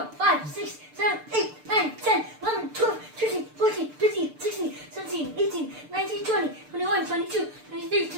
5, 6, 7, 8, 9, 10, 11, 12, 13, 14, 15, 16, 17, 18, 19, 20, 21, 22, 23,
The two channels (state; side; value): late; left; 6.7 ms